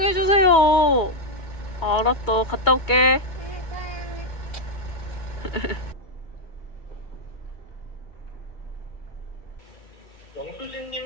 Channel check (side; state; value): right; late; 2.2 ms